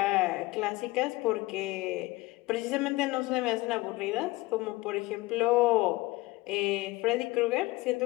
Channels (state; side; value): quieter; right; 20.9 dB